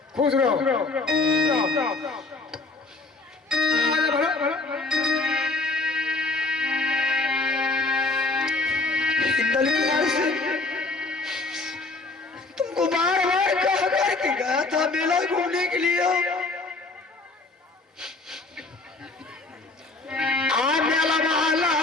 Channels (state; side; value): quieter; right; 3.5 dB